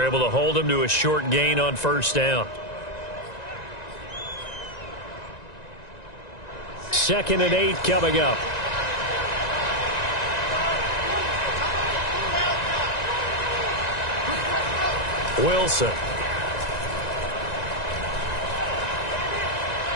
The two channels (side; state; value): right; late; 1.9 ms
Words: able to hold him to a short gain on first down. 2nd and 8 coming up. Wilson.